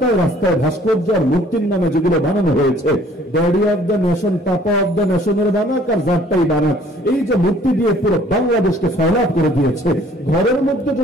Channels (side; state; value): both; normal; correlation 0.57